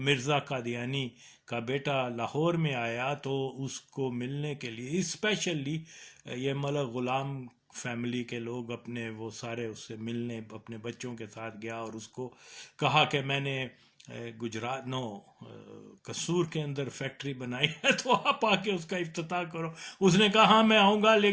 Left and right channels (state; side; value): identical; both; correlation 1.00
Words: قادیانی کا بیٹا لاہور میں آیا تو اس کو ملنے کے لیے اسپیشلی یہ ملک غلام فیملی کے لوگ اپنے وہ سارے اس سے ملنے اپنے بچوں کے ساتھ گیا اور اس کو کہا کہ میں نے گجرات قصور کے اندر فیکٹری بنائی ہے تو آپ آ کے اس کا افتتاح کرو۔ اس نے کہا ہاں میں آؤں گا،